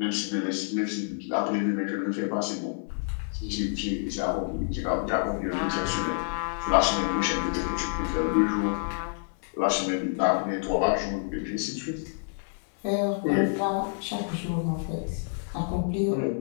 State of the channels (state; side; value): silent; right; 59 dB below the other